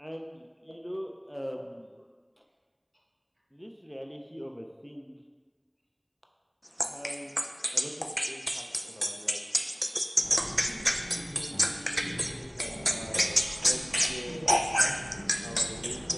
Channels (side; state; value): both; identical; correlation 1.00